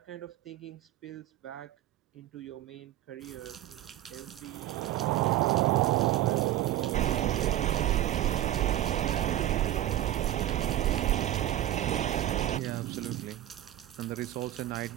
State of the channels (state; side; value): quieter; left; 13.5 dB